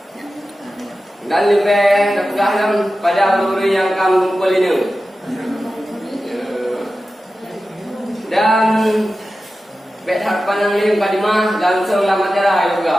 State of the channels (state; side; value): normal; both; correlation 0.94